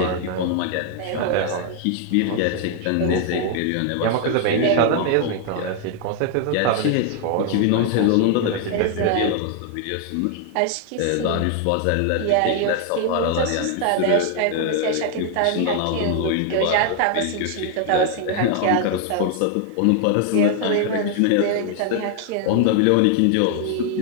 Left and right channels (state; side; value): different; both; correlation 0.00